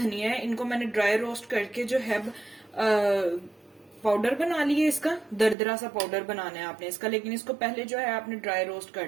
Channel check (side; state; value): left; drops out; at 5.6 s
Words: है। इनको मैंने ड्राई रोस्ट करके जो है पाउडर बना लिया। इसका दरदरा सा पाउडर बनाना है आपने इसका, लेकिन इसको पहले जो है आपने ड्राई रोस्ट